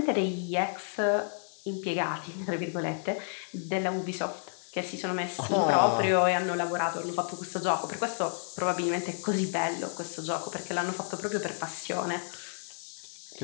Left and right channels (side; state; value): right; silent; digital silence